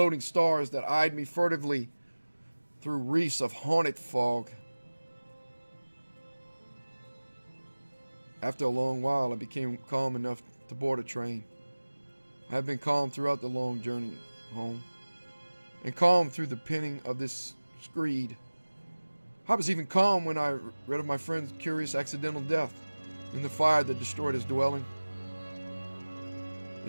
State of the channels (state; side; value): inverted; both; correlation -1.00